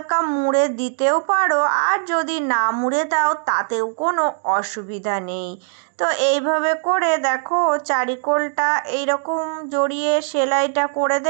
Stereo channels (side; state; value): left; silent; digital silence